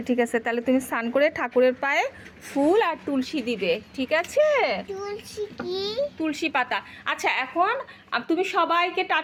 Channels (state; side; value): identical; both; correlation 1.00